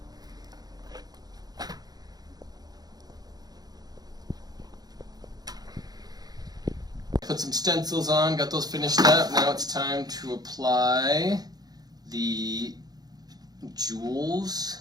Put some stencils on, got those finished up. Now it's time to apply the jewels.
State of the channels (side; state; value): left; late; 0.19 ms